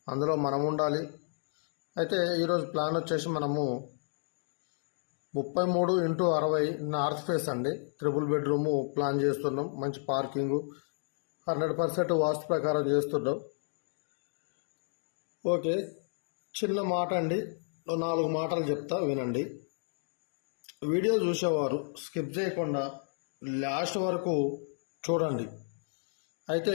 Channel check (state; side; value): silent; right; digital silence